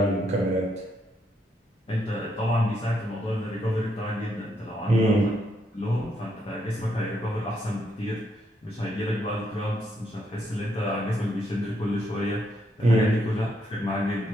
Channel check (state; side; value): normal; both; correlation 0.76